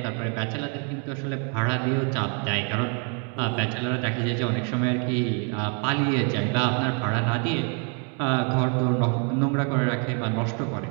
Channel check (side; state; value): left; quieter; 38.7 dB